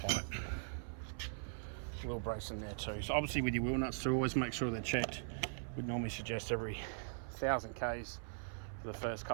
Wheel brace in there too. So obviously with your wheel nuts too, always make sure they're checked. We'd normally suggest every 1,000 Ks for the first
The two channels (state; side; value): silent; left; 51 dB below the other